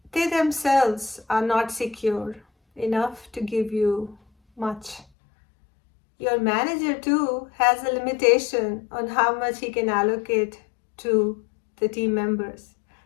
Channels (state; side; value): drops out; right; at 5.1 s